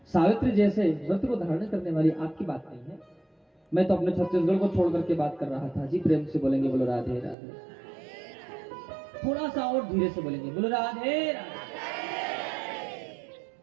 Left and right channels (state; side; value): drops out; left; at 7.4 s